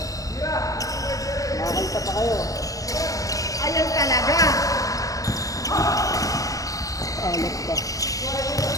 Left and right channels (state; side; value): late; right; 0.17 ms